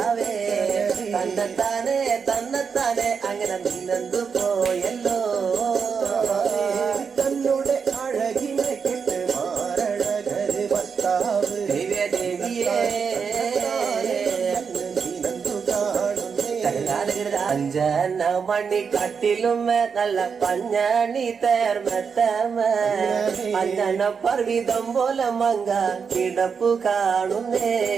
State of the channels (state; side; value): quieter; left; 6.1 dB